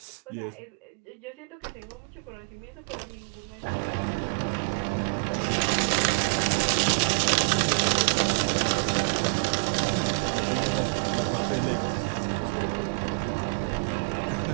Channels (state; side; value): quieter; left; 37.1 dB